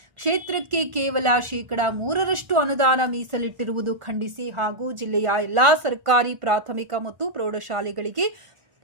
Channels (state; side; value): late; left; 1.4 ms